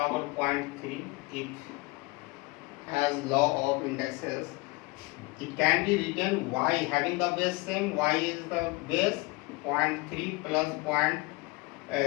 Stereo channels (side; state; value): right; quieter; 24.8 dB